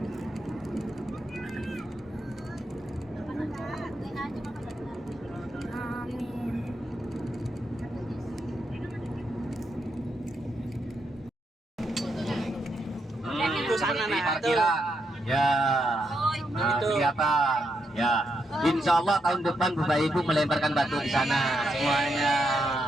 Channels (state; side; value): normal; both; correlation 0.81